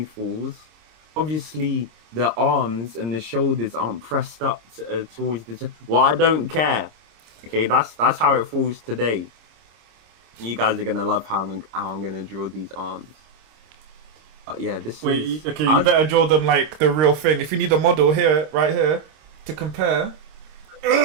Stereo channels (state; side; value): late; left; 26 ms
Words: falls. Obviously, the arms and the shoulders aren't pressed up towards the chest." Well, I don't care. Okay, that's how it falls today. You guys are gonna love how I'm gonna draw these arms. But yeah, you better draw them like the real thing. If you need a model here, right here, to compare.